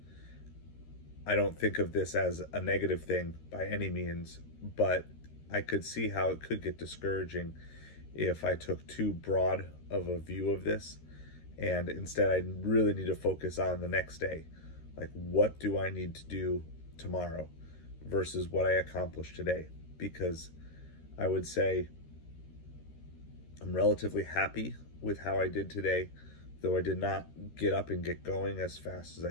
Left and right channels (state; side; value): late; right; 13 ms